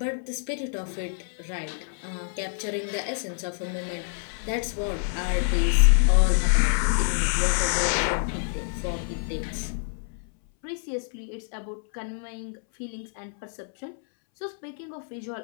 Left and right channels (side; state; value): right; silent; 60 dB below the other